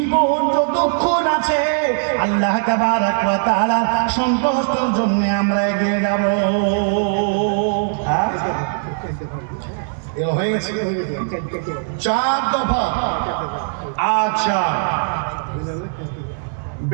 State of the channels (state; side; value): silent; left; digital silence